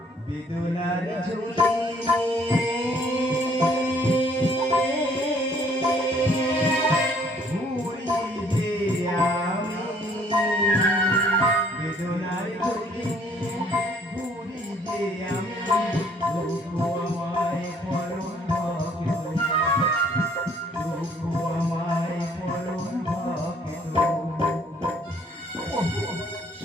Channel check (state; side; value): normal; both; correlation 0.61